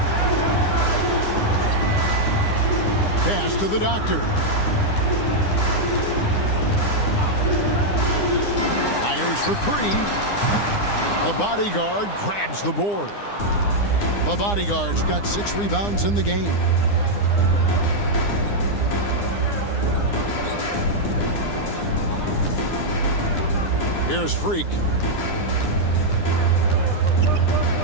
Pass to the Doctor. Fires for 3. The bodyguard grabs the board. The bodyguard's got 6 rebounds in the game. Here's Freak.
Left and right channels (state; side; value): late; right; 9.8 ms